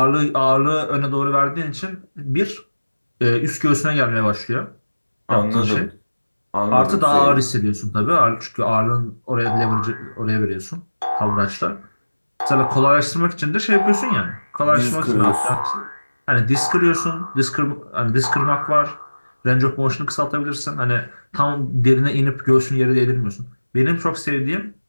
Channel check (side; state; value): both; inverted; correlation -1.00